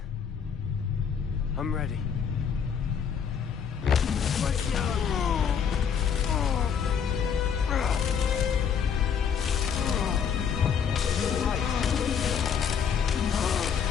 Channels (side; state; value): right; quieter; 7.3 dB